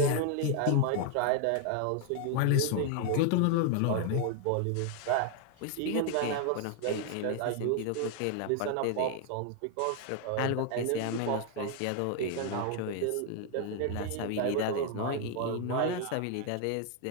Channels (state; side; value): different; both; correlation 0.00